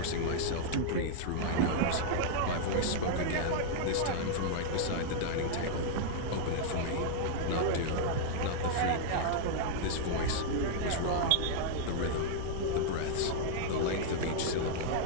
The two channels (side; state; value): both; different; correlation -0.01